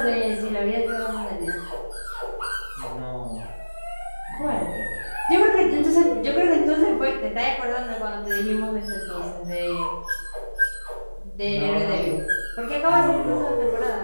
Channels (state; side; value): inverted; both; correlation -1.00